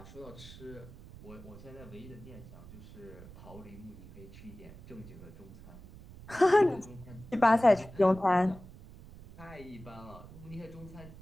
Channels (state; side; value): noise; right; rumble, 17 dB below the sound